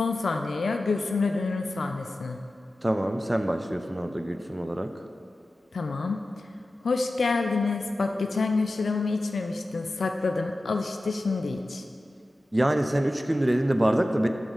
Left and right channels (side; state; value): both; normal; correlation 0.94